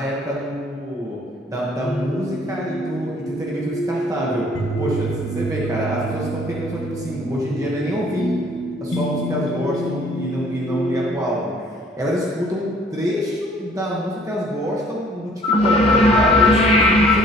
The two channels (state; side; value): normal; both; correlation 0.58